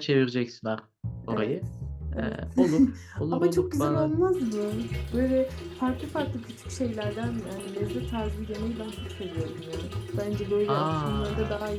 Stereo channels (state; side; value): identical; both; correlation 1.00